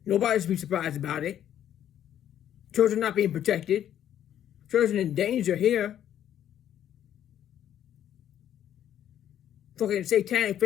Nobody should be surprised about it. Children not being protected. Children in danger here. Fucking satanic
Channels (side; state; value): right; quieter; 10.6 dB